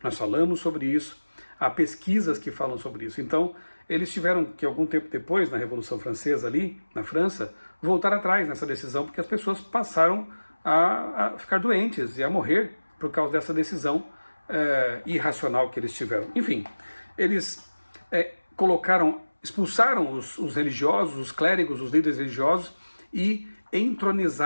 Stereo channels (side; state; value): both; inverted; correlation -1.00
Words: Nós falamos sobre isso, há pesquisas que falam sobre isso. Então, eles tiveram que, algum tempo depois, na Revolução Francesa ali, na França, voltar atrás nessa decisão, porque as pessoas passaram a ficar doentes e a morrer por causa dessa decisão irracional que eles tiveram. Enfim, eles expulsaram os religiosos, os clérigos, os líderes religiosos e